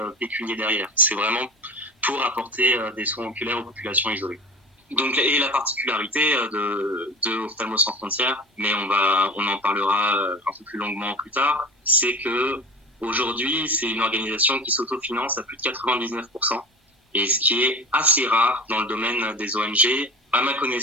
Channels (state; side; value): normal; both; correlation 0.36